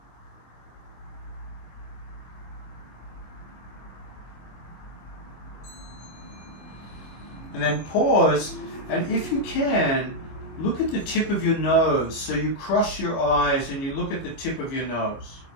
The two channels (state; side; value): late; right; 25 ms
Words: And then pause, and if you can, look at the tip of your nose. So you cross your eyes and you look at the tip of your nose.